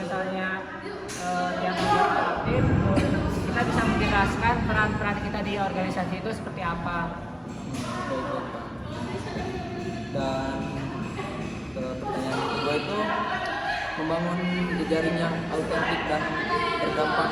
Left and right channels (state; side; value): identical; both; correlation 1.00